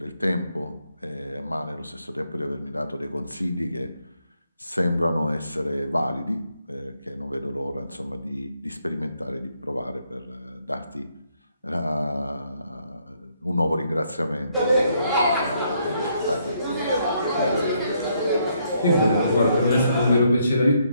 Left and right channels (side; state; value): both; inverted; correlation -0.73